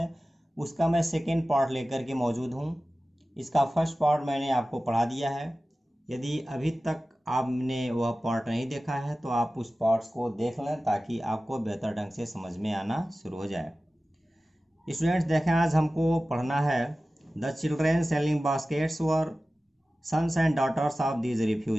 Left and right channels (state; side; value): normal; both; correlation 0.96